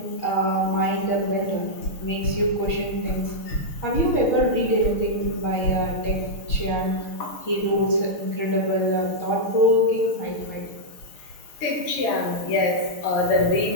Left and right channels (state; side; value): late; right; 6.4 ms